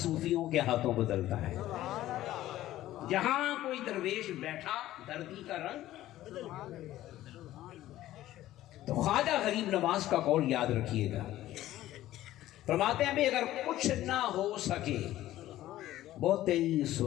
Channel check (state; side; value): quieter; right; 14.5 dB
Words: کے ہاتھوں بدلتا ہے۔ جہاں کوئی درویش بیٹھا دھرتی کا رنگ۔ تو خواجہ غریب نواز کا قول یاد رکھیے گا، فرماتے ہیں اگر کچھ نہ ہو سکے بہت ہی